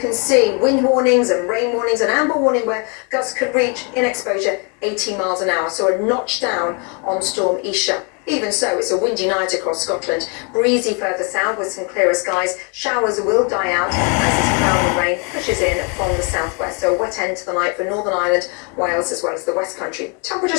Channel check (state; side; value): quieter; right; 35.5 dB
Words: see wind warnings and rain warnings and amber warning where gusts could reach in exposure 80 miles an hour. So a notch down on Storm Isha. Even so, it's a windy night across Scotland. Breezy further south with some clearer skies. Showers will die out as this cloud and rain pushes in from the southwest. So a wet end to the night for Northern Ireland, Wales as well as the West Country.